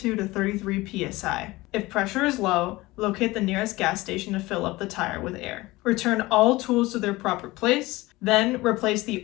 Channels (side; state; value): right; quieter; 20.1 dB